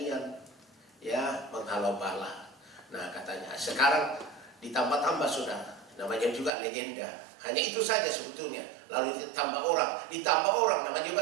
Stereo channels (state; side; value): drops out; left; at 6.5 s